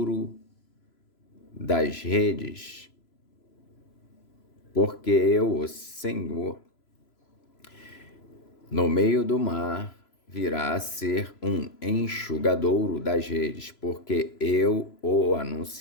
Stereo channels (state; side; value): late; right; 3.0 ms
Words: das redes, porque eu, o Senhor, no meio do mar virá a ser um enxugadouro das redes, porque eu o